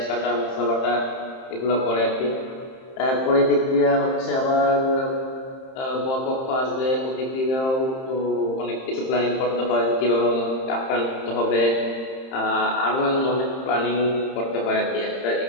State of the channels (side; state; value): right; late; 30 ms